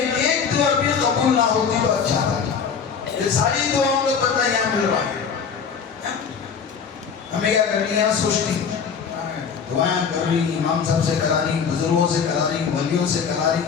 دعا بھی قبول نہ ہوتی تو اچھا تھا. یہ ساری دعاؤں کا بدلہ یہاں مل رہا ہے. ہمیں کیا کرنی ہے، سوچتی دعائیں کر رہی، امام صاحب سے کرا رہی، بزرگوں سے کرا رہی، ولیوں سے کرا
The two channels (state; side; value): quieter; right; 6.4 dB